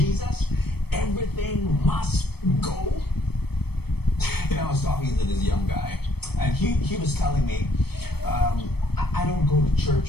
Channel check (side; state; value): right; late; 0.97 ms